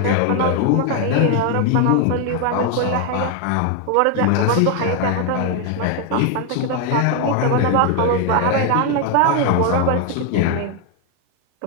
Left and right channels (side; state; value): both; different; correlation 0.01